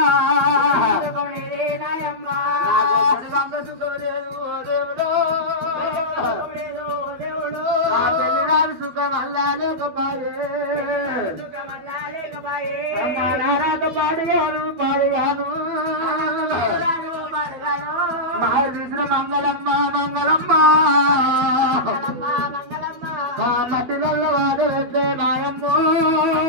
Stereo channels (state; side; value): late; left; 12 ms